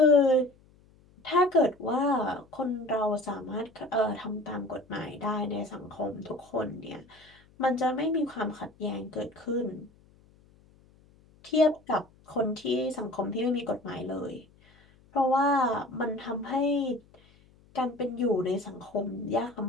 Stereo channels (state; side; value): noise; left; hum, 29 dB below the sound